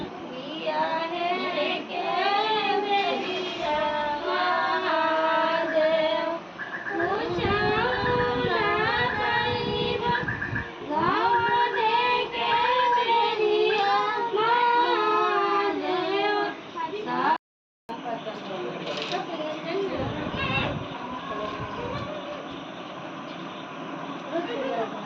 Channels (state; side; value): identical; both; correlation 1.00